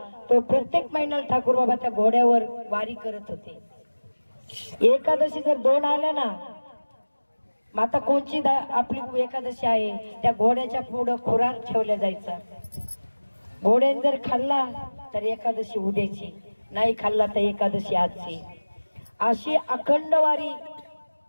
तो प्रत्येक महिन्याला ठाकूर बाबा त्या घोड्यावर वारी करत होते। एकादशी जर 2 आल्या ना, आता कोणची आपली एकादशी आहे, त्या घोड्याच्या पुढं खुराक ठेवल्या जायचा। घोड्याने जर खाल्ला तर एकादशी उद्याची, नाही खाल्ला तर एकादशी आजची। अशी अखंड वारी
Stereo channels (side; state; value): both; inverted; correlation -1.00